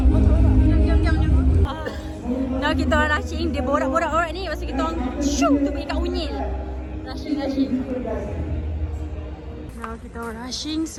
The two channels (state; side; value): identical; both; correlation 1.00